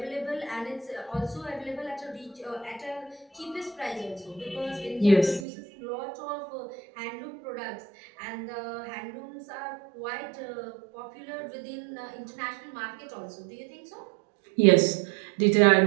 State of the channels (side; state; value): left; drops out; at 5.5 s